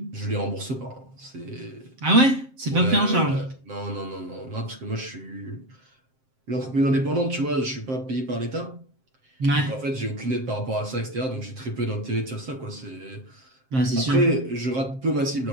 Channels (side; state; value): left; late; 7.6 ms